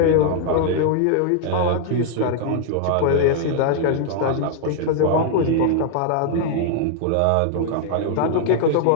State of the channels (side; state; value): both; different; correlation -0.01